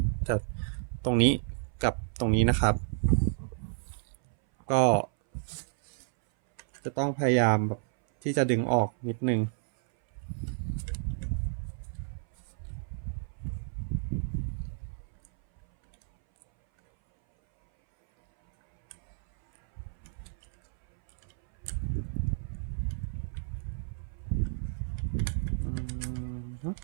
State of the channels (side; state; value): left; silent; 57 dB below the other